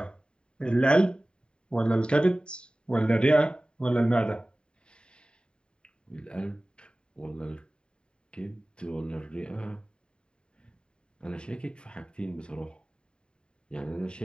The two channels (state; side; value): late; right; 0.050 ms